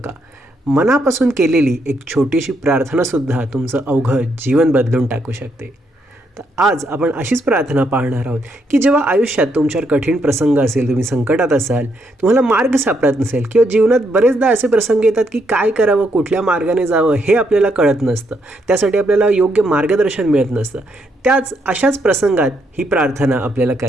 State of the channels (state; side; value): normal; both; correlation 0.76